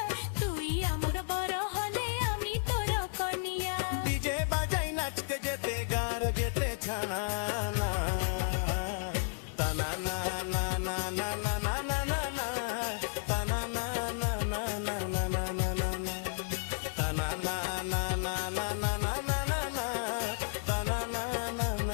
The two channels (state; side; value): silent; right; digital silence